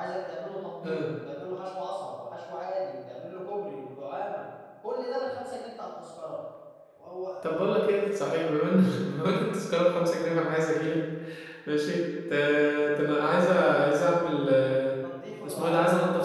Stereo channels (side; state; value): both; identical; correlation 1.00